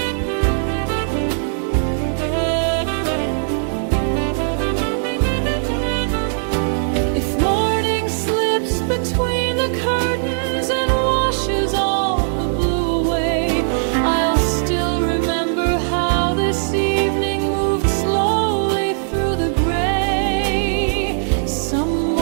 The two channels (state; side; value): silent; left; digital silence